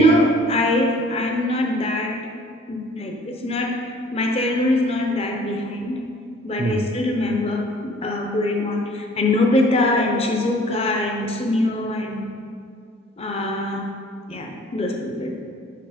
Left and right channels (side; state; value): both; normal; correlation 0.53